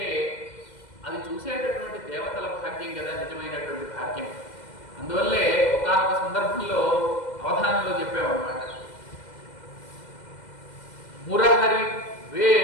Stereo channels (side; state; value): right; late; 2.1 ms